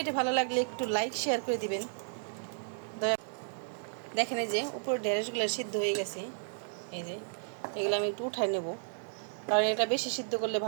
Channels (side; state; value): left; silent; digital silence